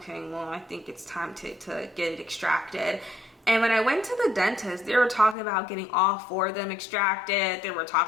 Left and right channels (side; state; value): right; drops out; at 5.4 s